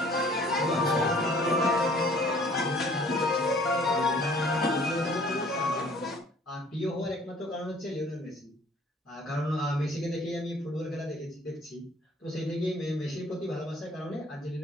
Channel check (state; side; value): normal; both; correlation 0.55